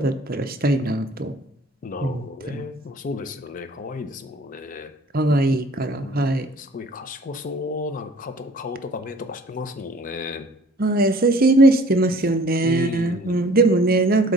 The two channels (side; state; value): both; normal; correlation 0.52